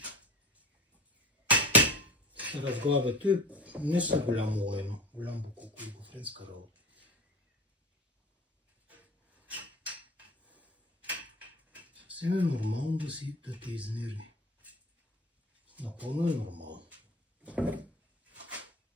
Се разглавя. Той не са голямо лайно. Голям буклук, олигофренска работа. Съвсем е нормално да те изнерви. Напълно е нормално.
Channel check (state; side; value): normal; both; correlation 0.36